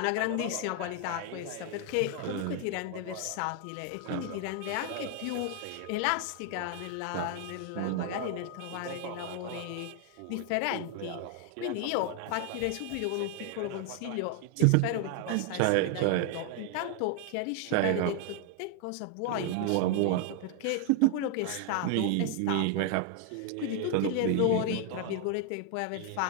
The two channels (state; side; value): different; both; correlation 0.00